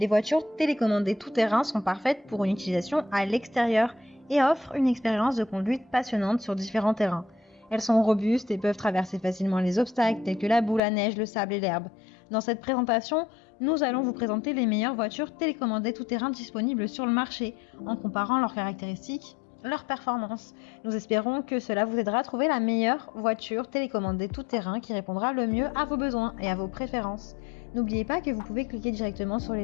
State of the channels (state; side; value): drops out; right; at 10.8 s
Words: voitures télécommandées tout-terrain sont parfaites pour une utilisation à l'extérieur et offrent une expérience de conduite passionnante sur différents terrains. Elles sont robustes et peuvent traverser facilement les obstacles tels que la boue, la neige, le sable et l'herbe. Dans cette présentation, nous allons vous présenter les meilleures voitures télécommandées tout-terrain disponibles sur le marché en comparant leurs caractéristiques, leurs performances. Nous espérons que cela vous aidera à trouver la meilleure voiture télécommandée tout-terrain qui répondra le mieux à vos besoins et à vos préférences. N'oubliez pas que vous pouvez cliquer directement sur